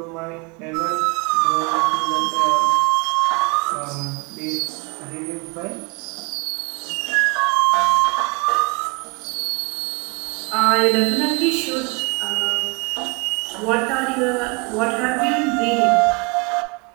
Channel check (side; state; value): left; quieter; 31.0 dB